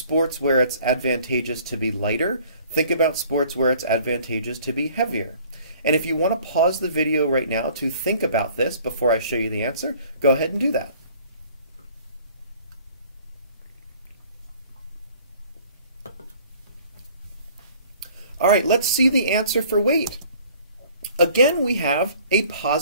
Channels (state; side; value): inverted; both; correlation -0.53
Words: where it's advantageous to be lighter. Think about sports where it's advantageous to be heavier. And if you want to pause the video right now to think about this before I show you the answer, go ahead and do that. All right, let's see the answer for weight. Again, we have a